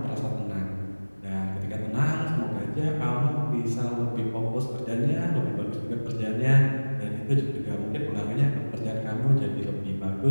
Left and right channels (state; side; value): inverted; both; correlation -1.00